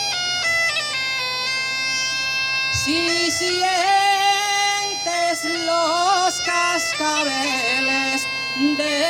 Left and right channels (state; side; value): identical; both; correlation 1.00